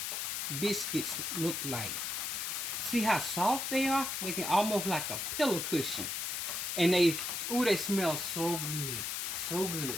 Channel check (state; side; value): noise; left; hiss, 2 dB below the sound